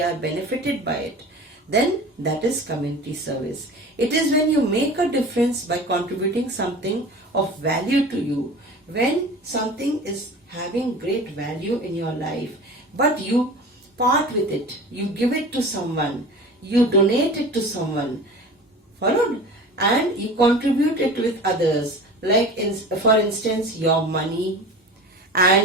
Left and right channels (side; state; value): both; normal; correlation 0.37